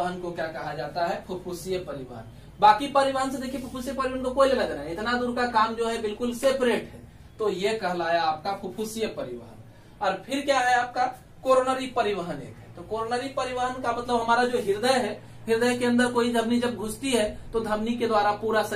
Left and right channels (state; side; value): identical; both; correlation 1.00